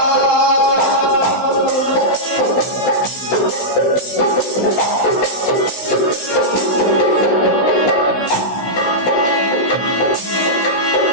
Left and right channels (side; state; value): right; late; 16 ms